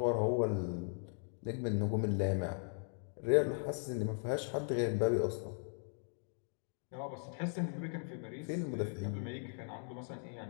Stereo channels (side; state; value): right; silent; 52 dB below the other